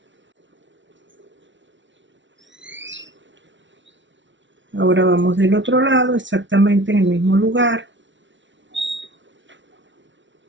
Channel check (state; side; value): late; left; 0.55 ms